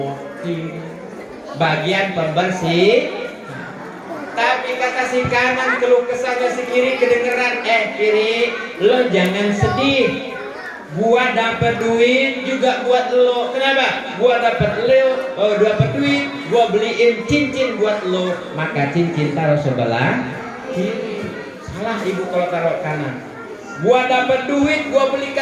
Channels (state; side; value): identical; both; correlation 1.00